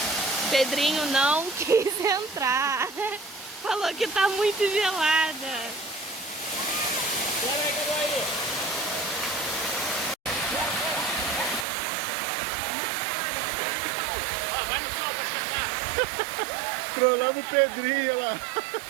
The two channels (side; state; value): left; drops out; at 11.7 s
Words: Pedrinho não quis entrar. Falou que tá muito gelada. Bora aí, cadê aí? Trollamos o Pedrinho lá.